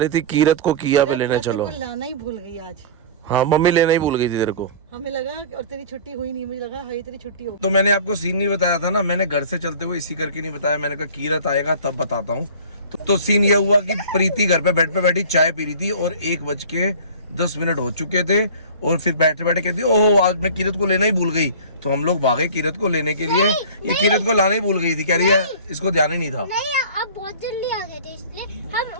थी कीरत को किया पे लेने चलो। लाना ही भूल गई आज। हाँ, मम्मी लेना ही भूल गई थी तेरे को। हमें लगा और तेरी छुट्टी हुई नहीं, मुझे लगा हाँ तेरी छुट्टी हो। तो मैंने आपको सीन नहीं बताया था ना, मैंने घर से चलते हुए इसी करके नहीं बताया। मैंने कहा कीरत आएगा तब बताता हूँ। तो सीन यह हुआ कि प्रीति घर पे बेड पे बैठी चाय पी रही थी और 1:10 हो चुके थे। और फिर बैठे बैठे कहती ओहो आज मैं कीरत को लेना ही भूल गई। तो हम लोग भागे कीरत को लेने के लिए। ये कीरत को लाना ही भूल गई थी, कह रही है इसको ध्यान ही नहीं था। नहीं, आप बहुत जल्दी आ गए थे, इसलिए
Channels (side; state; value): both; inverted; correlation -0.40